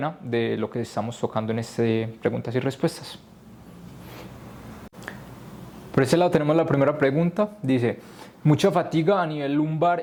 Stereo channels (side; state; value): both; identical; correlation 1.00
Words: de lo que estamos tocando en este preguntas y respuestas. Por ese lado tenemos la primera pregunta, dice, mucha fatiga a nivel